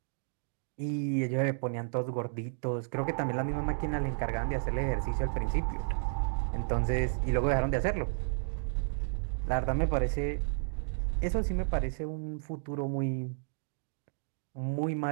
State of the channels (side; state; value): left; silent; digital silence